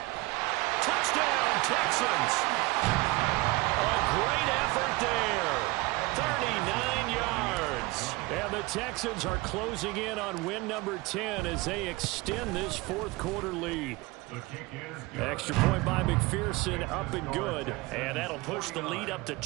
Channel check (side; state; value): left; quieter; 22.5 dB